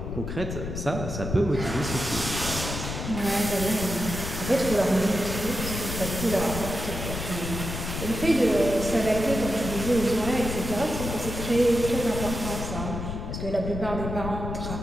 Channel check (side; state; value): left; noise; rumble, 5 dB below the sound